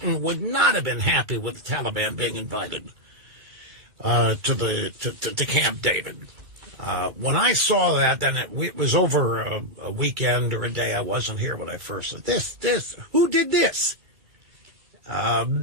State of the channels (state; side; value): late; left; 2.3 ms